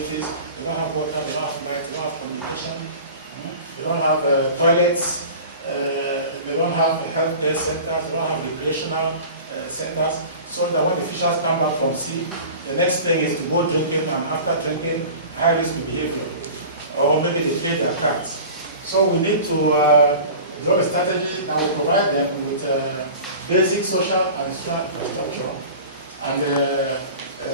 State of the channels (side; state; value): both; inverted; correlation -0.38